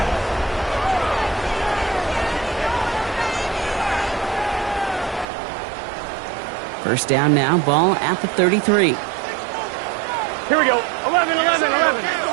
First down now, ball at the 33. Here we go. 11, 11, 11.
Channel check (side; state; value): left; drops out; at 5.2 s